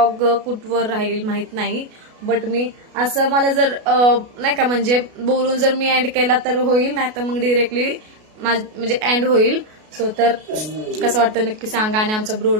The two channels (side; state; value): left; late; 33 ms